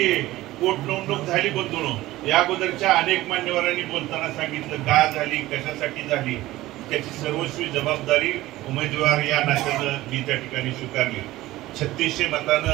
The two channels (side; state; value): left; quieter; 17.0 dB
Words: पोटनिवडणूक झाली बंधूंनो. या अगोदरच्या अनेक मान्यवरांनी बोलताना सांगितलं का झाली, कशासाठी झाली, त्याची सर्वस्वी जबाबदारी उमेदवार या नात्यानं मी त्या ठिकाणी स्वीकारली. 3600